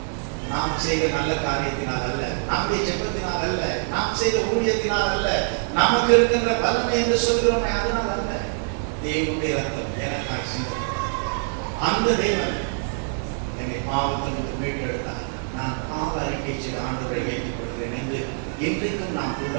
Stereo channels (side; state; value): left; silent; 62 dB below the other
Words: நாம் செய்த நல்ல காரியத்தினால் அல்ல, நம்முடைய ஜெபத்தினால் அல்ல, நாம் செய்த ஊழியத்தினால் அல்ல, நமக்கு இருக்கின்ற பலனை என்று சொல்கிறோமே அதனால் அல்ல. தேவனுடைய ரத்தம் எனக்காக சிந்தப்பட்டது. அந்த தேவன் என்னை பாவத்திலிருந்து மீட்டெடுத்தார். நான் பாவ அறிக்கை செய்த ஆண்டவரை ஏற்றுக் கொள்கிறேன் என்று இன்றைக்கும் நாம்